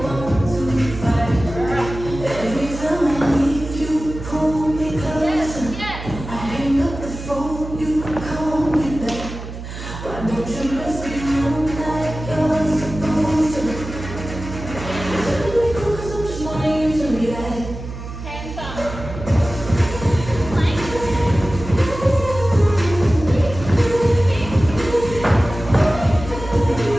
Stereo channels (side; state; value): right; noise; hum, 10 dB below the sound